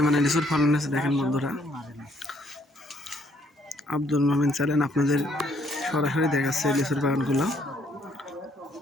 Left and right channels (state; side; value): normal; both; correlation 0.67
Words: লিচুর ফলন হয়েছে দেখেন বন্ধুরা। আব্দুল মোমিন চ্যানেল আপনাদের সরাসরি দেখাচ্ছে লিচুর বাগানগুলো।